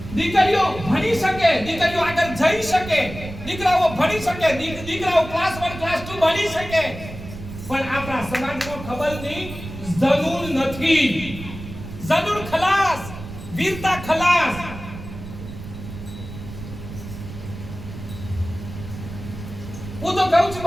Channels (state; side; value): noise; right; rumble, 11 dB below the sound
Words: દીકરીઓ ભણી શકે, દીકરીઓ આગળ જઈ શકે, દીકરાઓ ભણી શકે, દીકરાઓ ક્લાસ 1 ક્લાસ 2 ભણી શકે, પણ આપણા સમાજમાં ખબર નહીં, જનૂન નથી. જનૂન ખલાસ, વીરતા ખલાસ. હું તો કહું છું